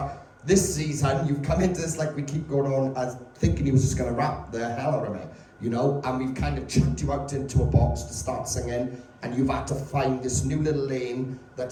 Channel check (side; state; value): both; identical; correlation 1.00